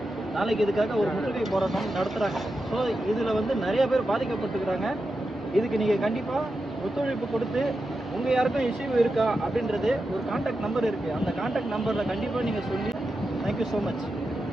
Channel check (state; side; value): normal; both; correlation 0.89